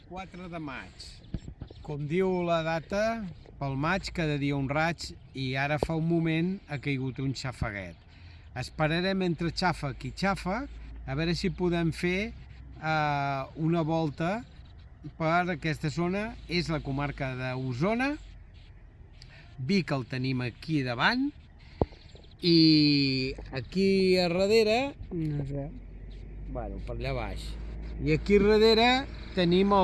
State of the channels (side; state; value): both; identical; correlation 1.00